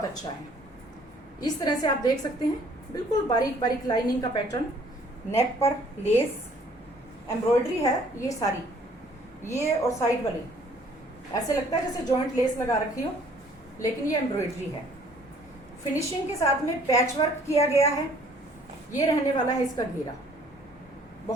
अच्छा है। इस तरह से आप देख सकते हैं, बिल्कुल बारीक बारीक लाइनिंग का पैटर्न, नेक पर लेस एम्ब्रॉयडरी है, ये सारी, ये और साइड वाली ऐसे लगता है जैसे जॉइंट लेस लगा रखी हो, लेकिन ये एम्ब्रॉयडरी है। फिनिशिंग के साथ में पैच वर्क किया गया है। ये रहने वाला है इसका घेरा,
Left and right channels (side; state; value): both; normal; correlation 0.58